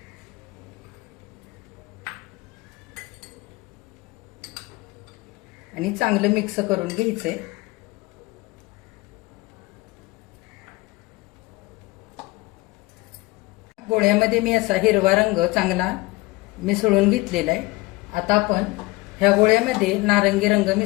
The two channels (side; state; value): right; quieter; 21.9 dB